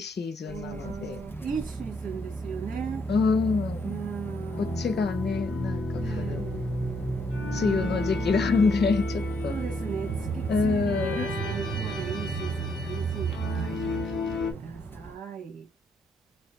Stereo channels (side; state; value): both; normal; correlation 0.73